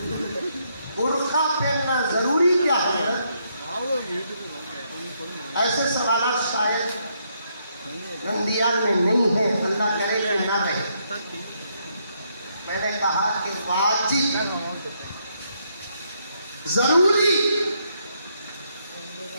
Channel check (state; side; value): inverted; both; correlation -0.75